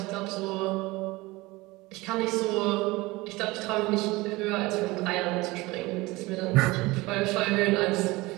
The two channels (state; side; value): quieter; left; 21.5 dB